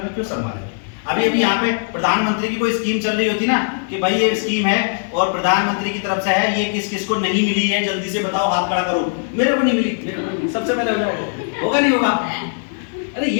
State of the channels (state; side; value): silent; right; 66 dB below the other